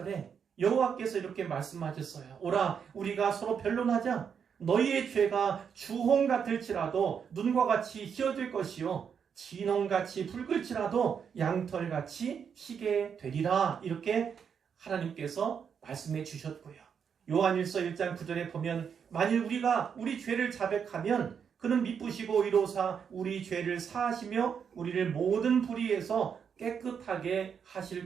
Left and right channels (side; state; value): left; quieter; 7.1 dB